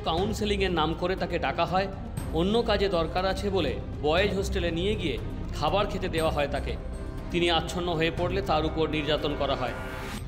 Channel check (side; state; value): both; identical; correlation 1.00